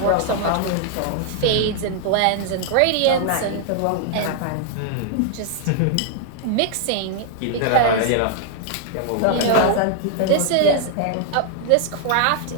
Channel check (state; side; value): different; both; correlation 0.00